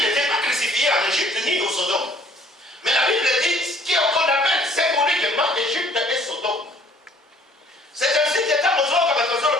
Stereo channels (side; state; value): both; normal; correlation 0.57